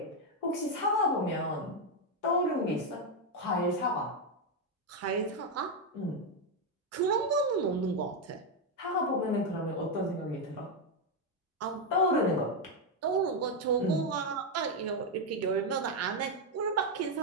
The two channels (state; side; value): normal; both; correlation 0.03